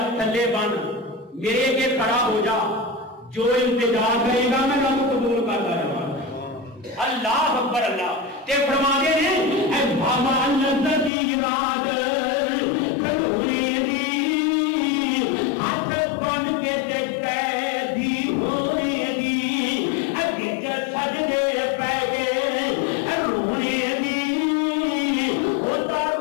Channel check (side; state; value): right; drops out; at 11.1 s